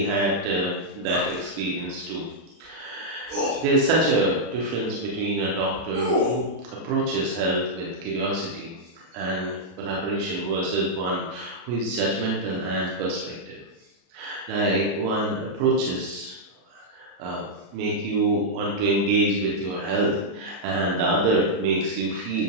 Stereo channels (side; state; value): left; late; 33 ms